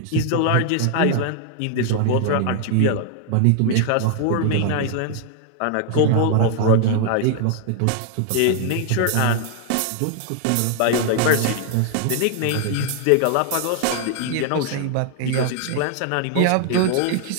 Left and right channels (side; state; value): both; different; correlation 0.00